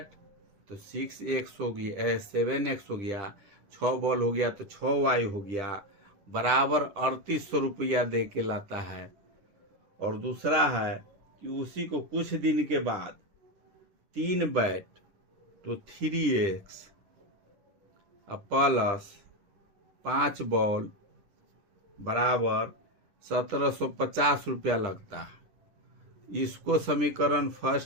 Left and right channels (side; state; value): left; late; 10 ms